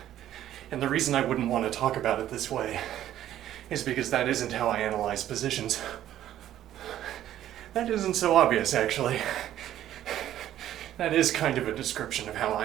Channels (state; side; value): quieter; left; 12.1 dB